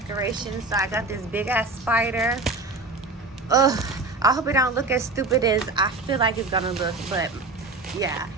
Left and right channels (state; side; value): quieter; left; 3.4 dB